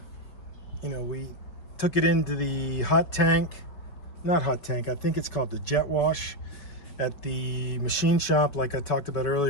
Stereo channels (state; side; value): late; right; 5.3 ms